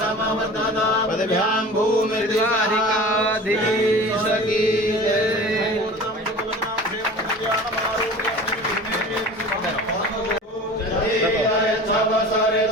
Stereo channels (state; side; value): normal; both; correlation 0.39